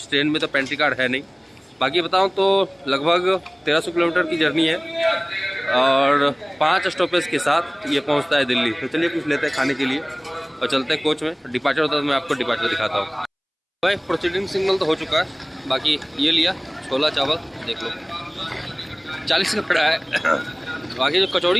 ट्रेन में तो पेंट्री कार्ड है नहीं। बाकी बताऊँ तो लगभग 1300 किलोमीटर की जर्नी है और 5 स्टॉपेज के साथ ये पहुँचता है दिल्ली। तो चलिए कुछ लेते हैं खाने के लिए और चलते हैं कोच में। डिपार्चर होता है तो मैं आपको डिपार्चर दिखाता हूँ। भाई प्रोसीडिंग सिग्नल तो हो चुका है, बाकी ये लिया छोला चावल, देख लो 40 का पड़ा है। बाकी जो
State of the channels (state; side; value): identical; both; correlation 1.00